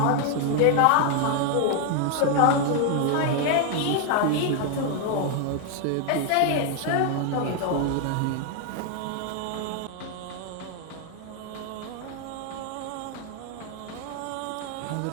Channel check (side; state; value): both; different; correlation 0.00